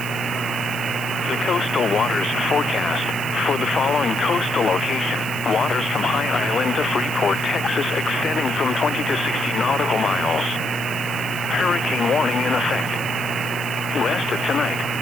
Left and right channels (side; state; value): right; noise; hiss, 13 dB below the sound